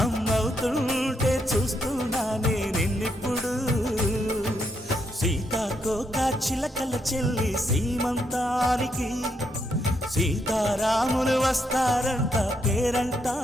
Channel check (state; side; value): normal; both; correlation 0.78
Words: అమ్మవుతుంటే చూస్తున్నా నేను నిన్నిప్పుడు సీతాకోక చిలకల చెల్లి సీమంతానికి సీతారాములు వస్తారంట